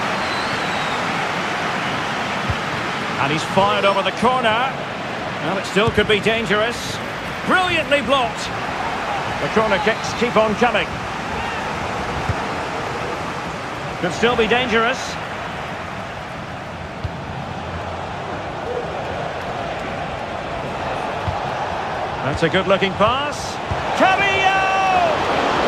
And he's fired over the corner. Well, it still could be dangerous. Brilliantly blocked. The corner kicks keep on coming. Could still be dangerous. That's a good-looking pass. Carrillo!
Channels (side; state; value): both; identical; correlation 1.00